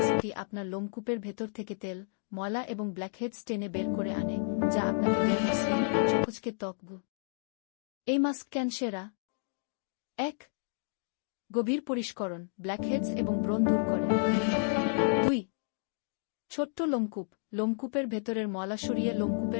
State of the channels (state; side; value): silent; right; digital silence